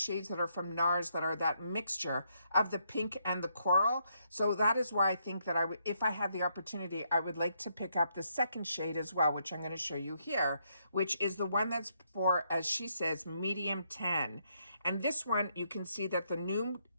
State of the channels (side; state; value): both; inverted; correlation -0.75